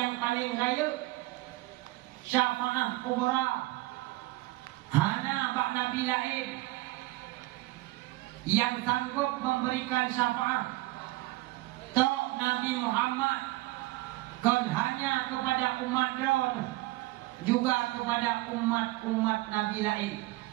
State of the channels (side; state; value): left; quieter; 19.4 dB